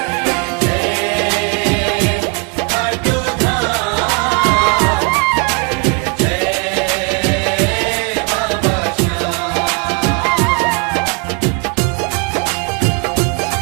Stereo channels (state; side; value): quieter; left; 34.6 dB